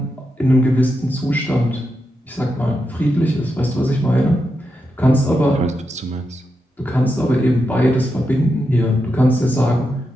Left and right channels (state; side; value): normal; both; correlation 0.86